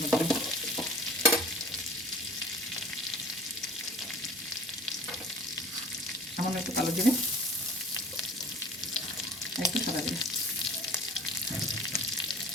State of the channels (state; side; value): normal; both; correlation 0.43